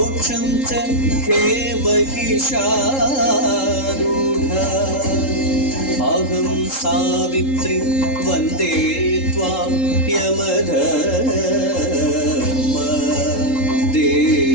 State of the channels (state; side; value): late; right; 3.8 ms